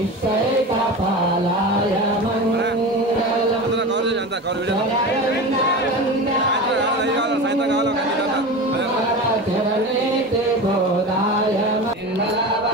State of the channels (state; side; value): normal; both; correlation 0.28